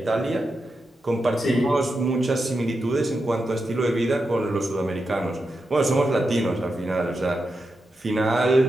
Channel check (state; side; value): normal; both; correlation 0.88